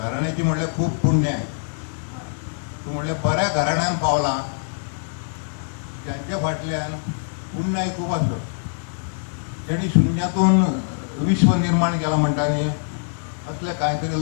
म्हणल्यार खूब पुण्य आहे. तूं म्हणलें बऱ्या घराण्यान पावला, जांच्या फाटल्यान पुण्याय खूब आसत. जेणी शुन्यातून विश्व निर्माण केला म्हणटा न्ही, असले कांयतरी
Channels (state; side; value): silent; right; digital silence